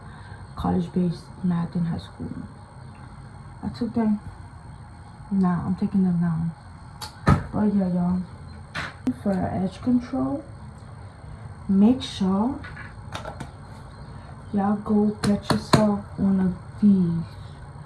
college-based math in high school. I took them now. I'm taking them now. But yeah, y'all. For edge control, make sure y'all go get yourself one of these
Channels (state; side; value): identical; both; correlation 1.00